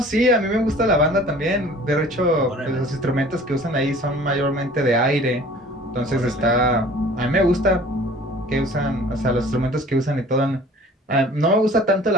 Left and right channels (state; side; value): normal; both; correlation 0.48